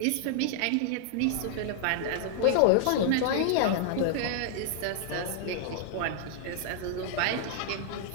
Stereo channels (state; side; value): different; both; correlation 0.00